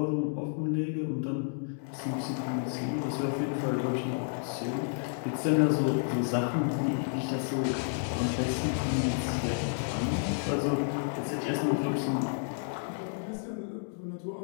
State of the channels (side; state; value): right; silent; 57 dB below the other